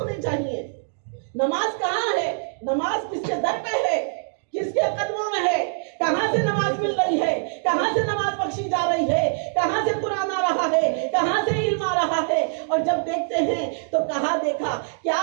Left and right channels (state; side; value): silent; left; digital silence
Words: चाहिए। नमाज कहाँ है? नमाज किसके दर पे है? किसके कदमों में है? कहाँ से नमाज मिल रही है? कहाँ से नमाज बख्शी जा रही है? कहाँ से कुरान आ रहा है? कहाँ से इल्म आ रहा है? और जब देखते हैं तो कहाँ देखा, क्या